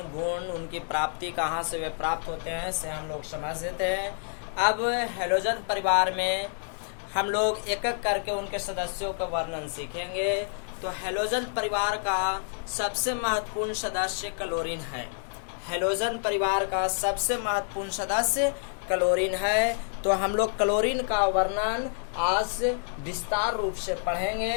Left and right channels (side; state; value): right; silent; digital silence